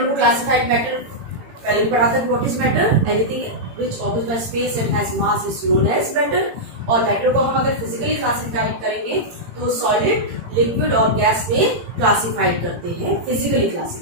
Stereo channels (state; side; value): late; left; 18 ms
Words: को क्लासिफाइड मैटर पहले भी पढ़ा था, what is matter, anything which occupies by space and has mass is known as matter. और मैटर को हम अगर फिजिकली क्लासिफाइड करेंगे तो सॉलिड, लिक्विड और गैस में क्लासिफाइड करते हैं फिजिकली